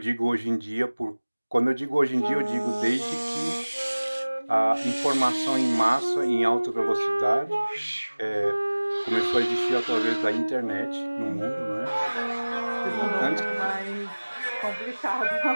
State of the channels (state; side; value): inverted; both; correlation -1.00